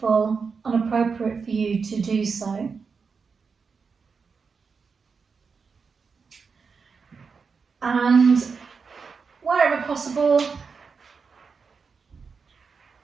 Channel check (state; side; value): quieter; left; 5.3 dB